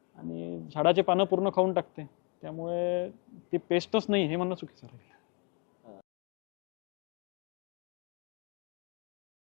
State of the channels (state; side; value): quieter; right; 34.7 dB